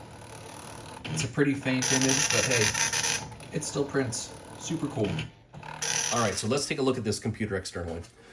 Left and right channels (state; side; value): identical; both; correlation 1.00